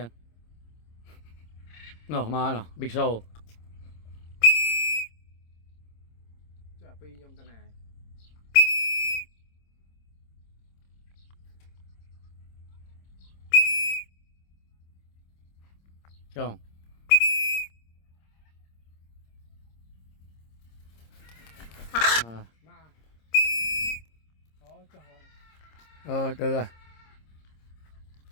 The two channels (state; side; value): late; right; 26 ms